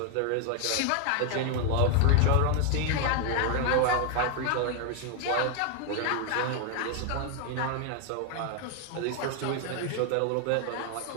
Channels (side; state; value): both; different; correlation 0.01